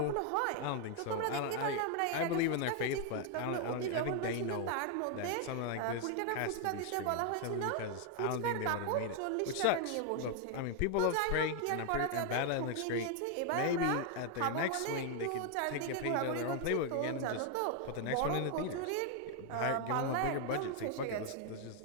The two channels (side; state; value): both; different; correlation 0.00